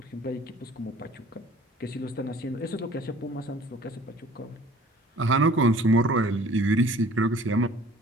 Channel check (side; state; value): both; normal; correlation 0.51